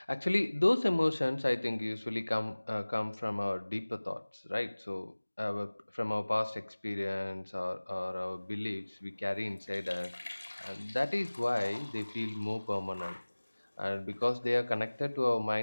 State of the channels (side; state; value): both; inverted; correlation -1.00